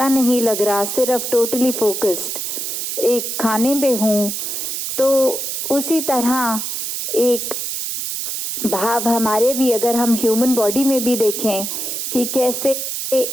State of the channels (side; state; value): right; noise; hiss, 3 dB below the sound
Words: नहीं लग रहा, सिर्फ टोटली फोकस्ड एक खाने में हूँ। तो उसी तरह एक भाव हमारे भी, अगर हम ह्यूमन बॉडी में भी देखें कि कैसे